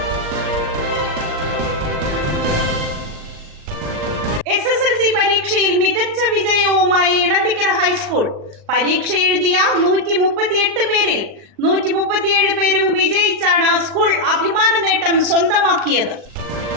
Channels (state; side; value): late; left; 39 ms